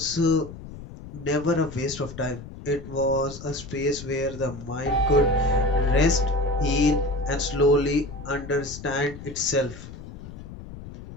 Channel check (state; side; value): noise; left; rumble, 14 dB below the sound